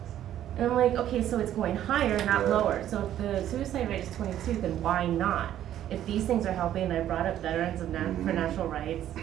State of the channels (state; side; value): quieter; left; 11.6 dB